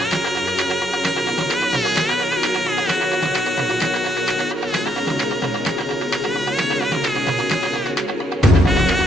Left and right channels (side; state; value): both; normal; correlation 0.74